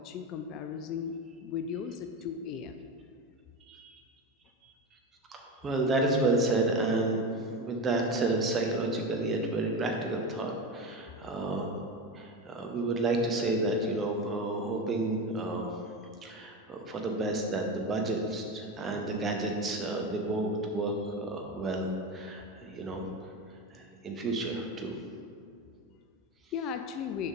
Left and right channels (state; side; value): normal; both; correlation 0.21